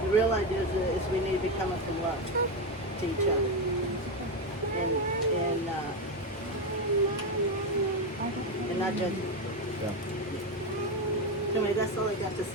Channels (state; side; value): normal; both; correlation 0.11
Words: The real idea is we need to be coming from love to each other. And not judging. Yeah. Anyway, that's all I got to